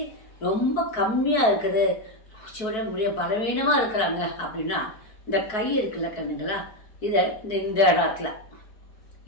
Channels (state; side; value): late; right; 4.6 ms